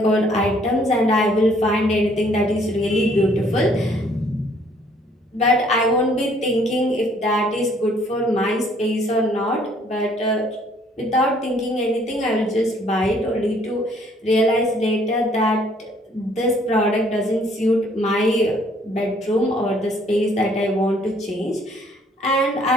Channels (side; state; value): both; normal; correlation 0.62